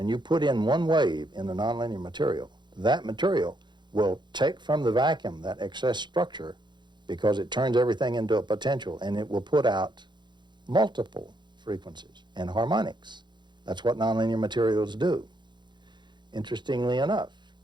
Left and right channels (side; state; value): left; late; 0.22 ms